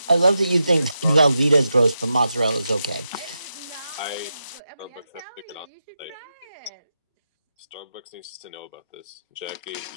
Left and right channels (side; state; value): both; inverted; correlation -0.88